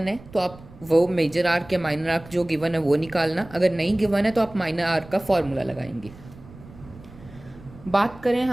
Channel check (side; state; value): right; noise; rumble, 20 dB below the sound